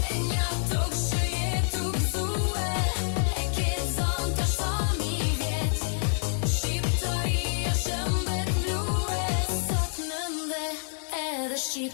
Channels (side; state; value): right; silent; digital silence